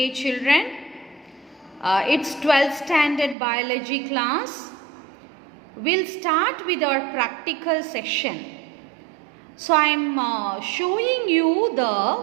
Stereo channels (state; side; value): drops out; left; at 3.4 s